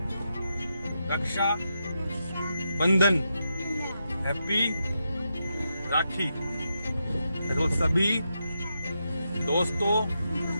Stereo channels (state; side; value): inverted; both; correlation -0.85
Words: रक्षा बंधन, हैप्पी राखी। देखो सभी दोस्तों